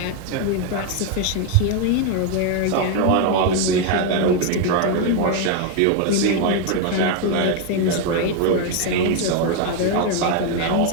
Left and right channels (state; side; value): different; both; correlation 0.01